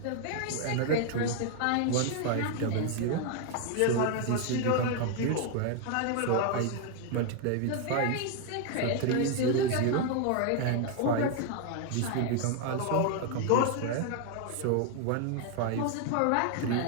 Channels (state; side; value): different; both; correlation 0.00